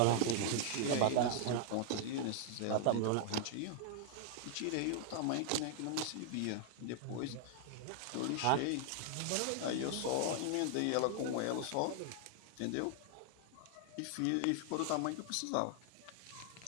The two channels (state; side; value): different; both; correlation 0.00